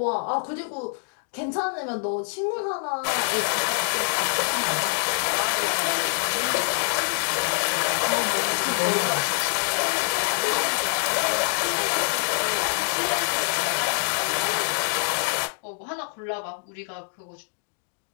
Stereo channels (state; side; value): silent; right; digital silence